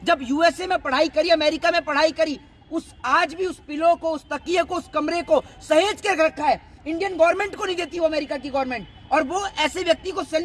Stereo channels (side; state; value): both; identical; correlation 1.00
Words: जब यूएसए में पढ़ाई करी, अमेरिका में पढ़ाई करी, उस आज भी उस पिलो को, उस तकिए को, उस कमरे को सहेज कर रखा है। इंडियन गवर्नमेंट को नहीं देती वो अमेरिका की गवर्नमेंट, और वो ऐसे व्यक्ति को